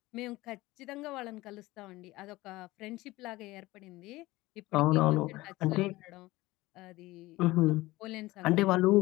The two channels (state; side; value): quieter; right; 19.2 dB